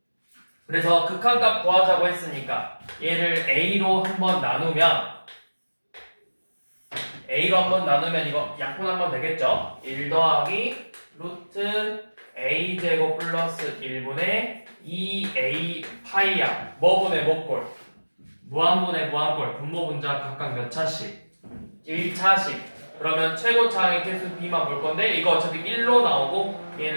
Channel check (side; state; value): both; inverted; correlation -1.00